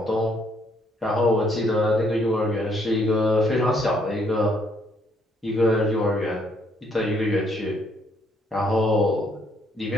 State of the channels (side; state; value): both; normal; correlation 0.69